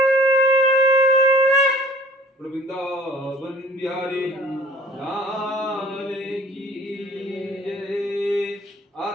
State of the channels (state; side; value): normal; both; correlation 0.49